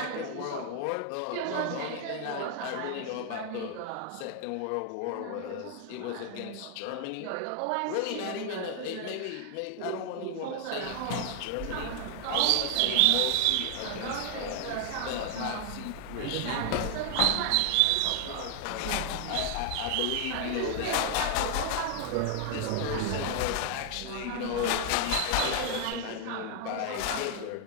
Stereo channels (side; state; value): both; different; correlation 0.00